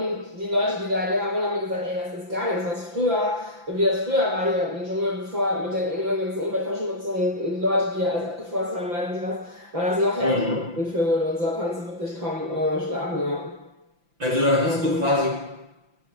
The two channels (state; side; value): late; left; 5.9 ms